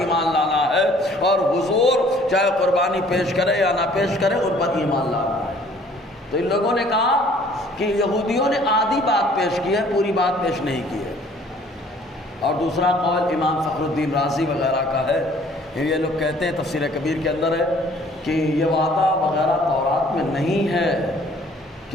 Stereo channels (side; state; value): both; normal; correlation 0.56